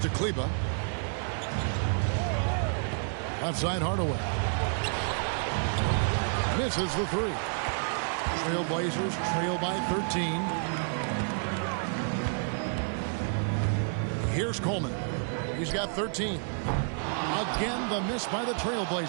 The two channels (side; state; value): left; silent; 58 dB below the other